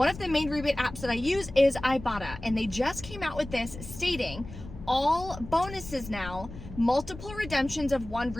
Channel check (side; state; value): left; noise; rumble, 13 dB below the sound